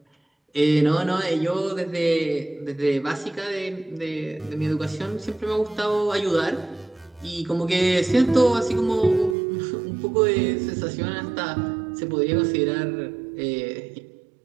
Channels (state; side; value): drops out; left; at 9.3 s